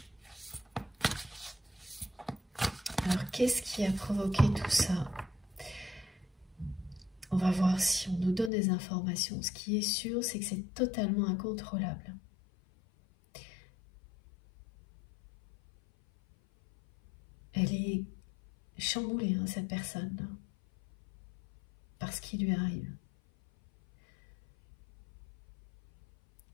Alors qu'est-ce qui a provoqué tout ça? On va voir si on nous donne des informations. Ce qui est sûr, c'est que c'est totalement incontrôlable. Elle est chamboulée, hein, cette personne-là, par ce qui lui arrive.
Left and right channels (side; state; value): right; drops out; at 8.5 s